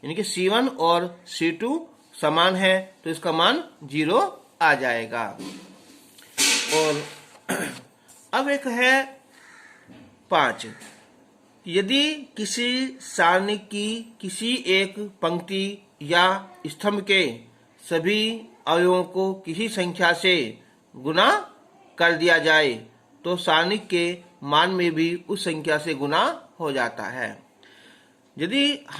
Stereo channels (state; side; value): identical; both; correlation 1.00